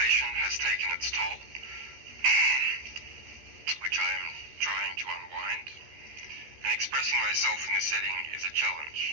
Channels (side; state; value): left; late; 13 ms